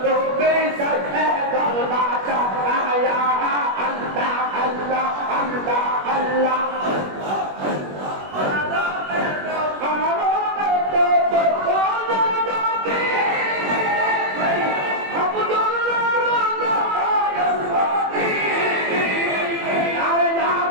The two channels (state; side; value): late; left; 21 ms